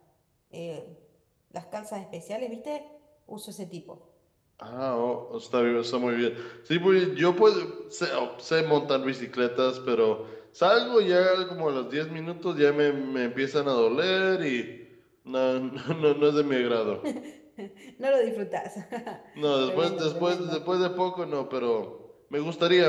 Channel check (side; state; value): both; identical; correlation 1.00